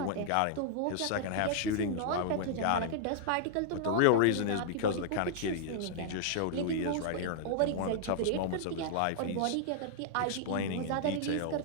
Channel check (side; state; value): both; different; correlation -0.01